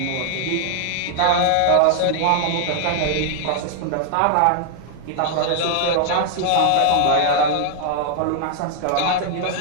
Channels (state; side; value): different; both; correlation 0.00